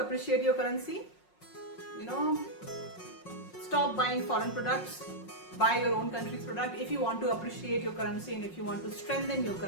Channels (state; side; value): late; right; 5.5 ms